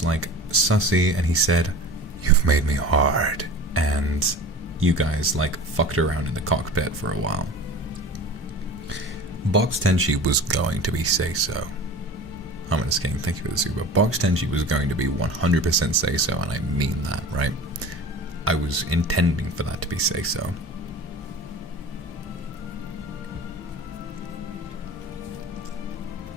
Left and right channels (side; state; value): both; normal; correlation 0.38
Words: like sussy, and he said, "You've made me hard," and you guys like fucked around in the cockpit for a while. Box Tenshi was going to be say-so. Harmonious King, thank you for the super. Box Tenshi was going to be 100% say-so, and I mean that, right? I was intending for that to be say-so.